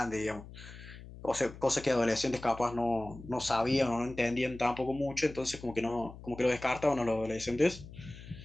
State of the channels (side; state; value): left; noise; hum, 15 dB below the sound